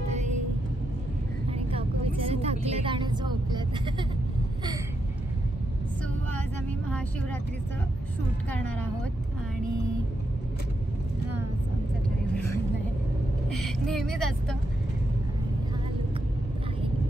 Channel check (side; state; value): both; normal; correlation 0.83